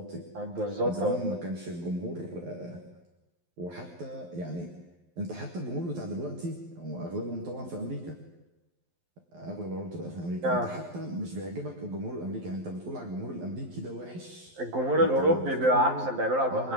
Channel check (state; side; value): late; left; 12 ms